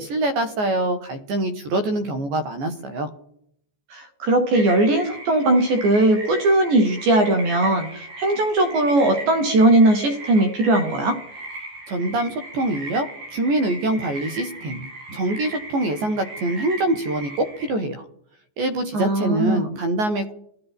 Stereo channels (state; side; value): late; left; 14 ms